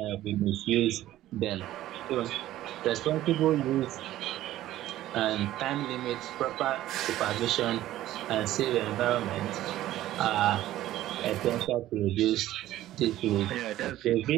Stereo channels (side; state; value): left; quieter; 14.3 dB